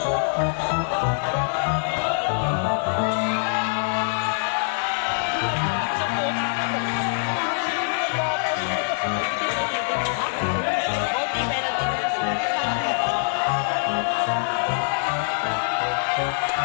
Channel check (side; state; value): right; silent; digital silence